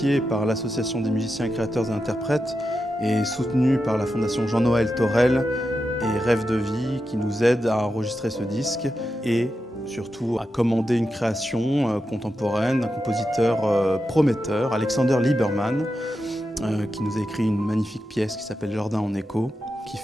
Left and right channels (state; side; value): normal; both; correlation 0.89